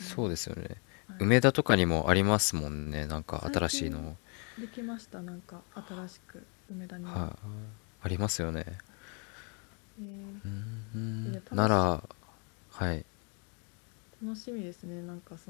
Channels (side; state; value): right; quieter; 36.6 dB